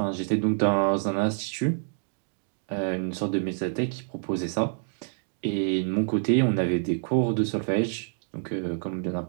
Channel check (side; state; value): left; silent; digital silence